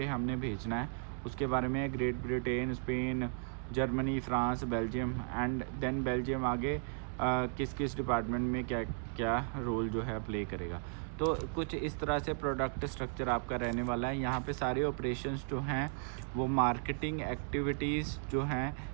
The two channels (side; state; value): left; silent; 54 dB below the other